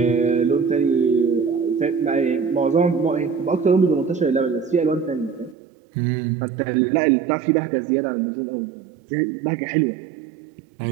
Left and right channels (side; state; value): left; drops out; at 5.6 s